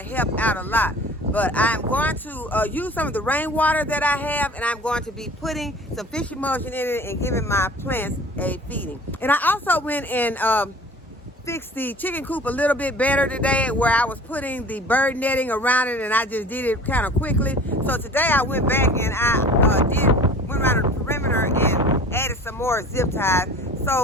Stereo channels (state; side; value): normal; both; correlation 0.43